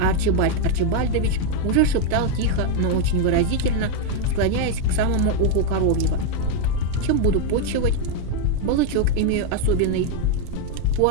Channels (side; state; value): both; different; correlation 0.01